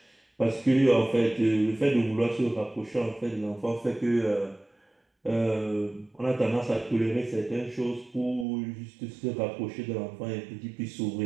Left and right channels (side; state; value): left; drops out; at 8.5 s